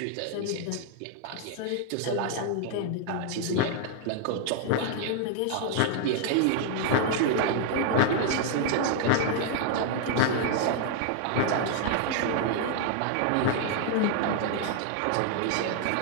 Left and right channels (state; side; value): different; both; correlation 0.00